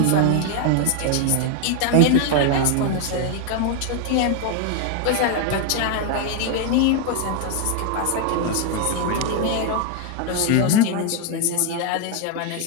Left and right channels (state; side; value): different; both; correlation 0.00